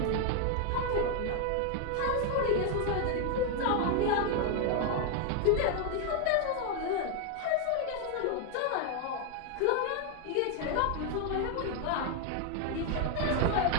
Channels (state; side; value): different; both; correlation 0.01